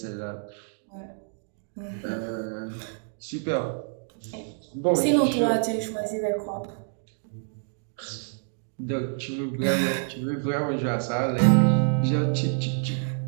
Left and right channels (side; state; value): left; silent; 60 dB below the other